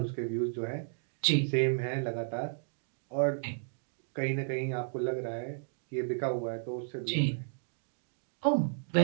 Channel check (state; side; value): silent; left; digital silence